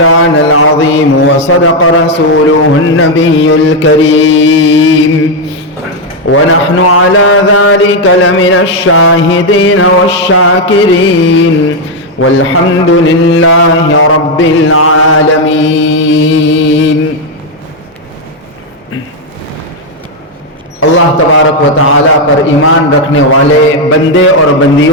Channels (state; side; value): normal; both; correlation 0.03